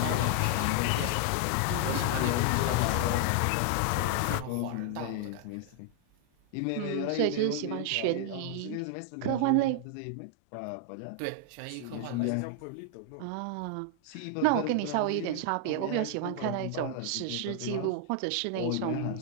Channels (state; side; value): different; both; correlation 0.00